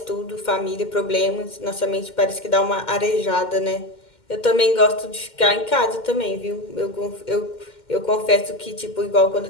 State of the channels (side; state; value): right; late; 2.1 ms